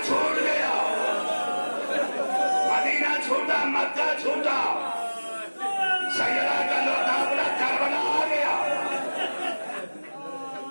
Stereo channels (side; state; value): both; inverted; correlation -1.00